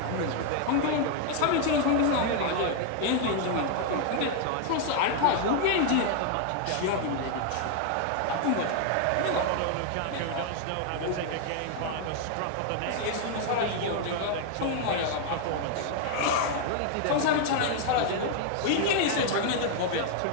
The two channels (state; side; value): different; both; correlation 0.00